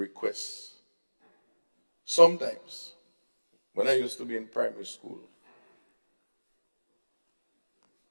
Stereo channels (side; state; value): both; inverted; correlation -1.00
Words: Sometimes, when I used to be in primary school,